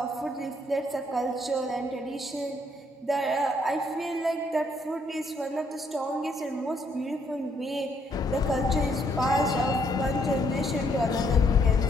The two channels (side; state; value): both; normal; correlation 0.70